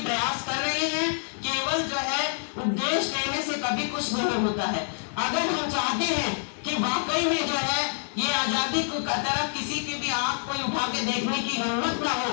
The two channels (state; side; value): silent; right; 60 dB below the other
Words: प्रयास कर रहे हैं? केवल जो है उपदेश देने से कभी कुछ नहीं होता है। अगर हम चाहते हैं कि वाकई में जो है ये आजादी को तरफ किसी की भी आंख कोई उठा के देखने की हिम्मत ना हो,